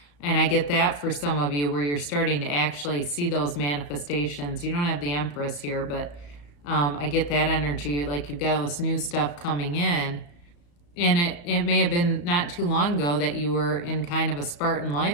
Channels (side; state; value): right; late; 35 ms